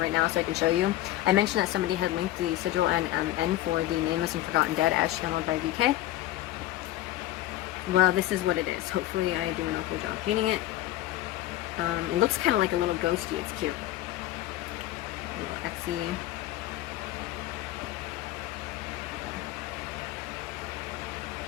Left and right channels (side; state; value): right; quieter; 15.0 dB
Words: now so I can show you. I mentioned that somebody had linked the sigil and N for the Nameless and Forgotten Dead as channeled by VK. Well, this is what it is. Hopefully I do an okay job painting it. It looks kind of like a little ghosty. It's cute. A little Etsy.